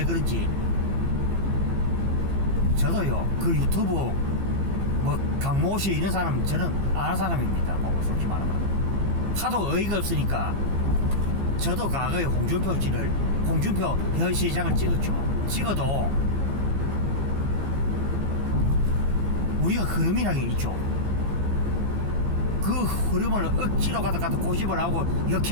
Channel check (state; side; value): late; left; 15 ms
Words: 그런지 저도요 그 유튜브 강모 씨 이런 사람 저는 아는 사람입니다. 솔직히 말하면 하도 어이가 없으니까 저도 과거에 홍준표 현 시장을 찍어도 우리가 흐름이라는 게 있죠. 그 흐름을 억지로 갖다 고집을 하고